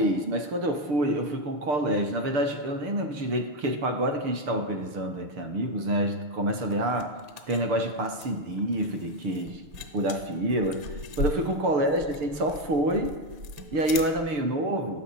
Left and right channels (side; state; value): left; late; 6.7 ms